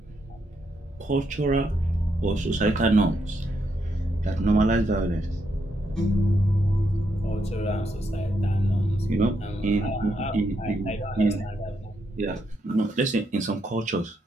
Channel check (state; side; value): normal; both; correlation 0.79